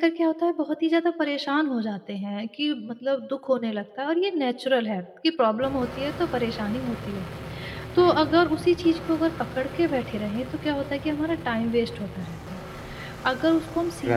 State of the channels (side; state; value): both; identical; correlation 1.00